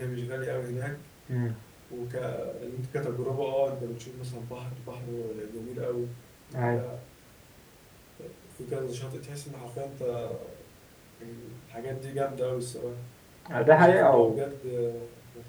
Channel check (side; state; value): both; identical; correlation 1.00